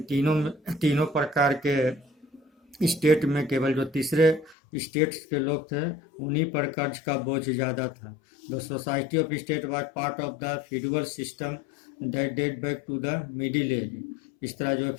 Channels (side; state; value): right; drops out; at 4.5 s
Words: तीनों प्रकार के स्टेट में केवल जो तीसरे स्टेट्स के लोग थे उन्हीं पर कर्ज का बोझ ज़्यादा था। The society of state was part of the feudal system that date back to the middle age. इस तरह जो